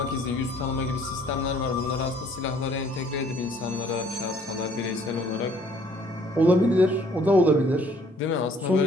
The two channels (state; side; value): normal; both; correlation 0.60